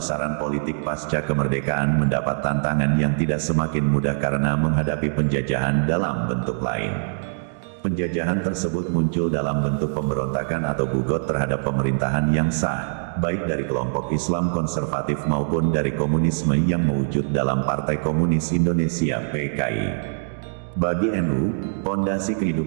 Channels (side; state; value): left; silent; digital silence